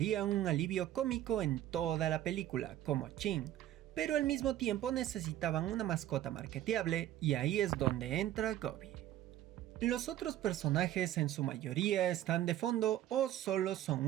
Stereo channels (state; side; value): quieter; left; 12.9 dB